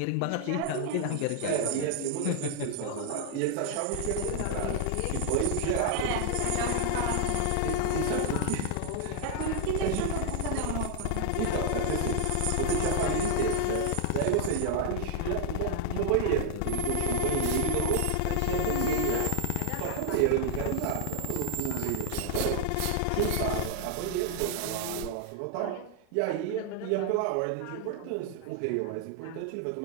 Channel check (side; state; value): both; different; correlation 0.00